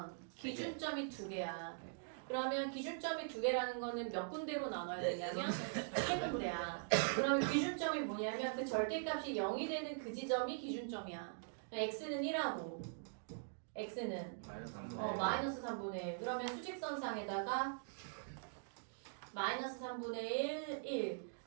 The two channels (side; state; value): left; silent; digital silence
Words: 기준점이 두 개야. 그러면 기준점이 두 개라는 거는 몇 군데로 나눠야 되냐면 세 군데야. 그러면 기준점이 뭐냐면 그 절대값이 0이 되는 그 지점이 기준점이야. x는 1하고 x는 마이너스 3분의 1. 그러면 수직선상에다가 마이너스 3분의 1.